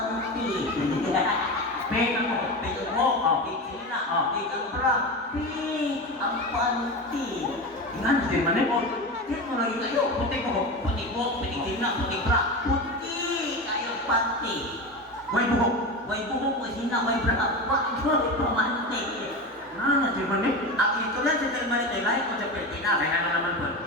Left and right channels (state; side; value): normal; both; correlation 0.23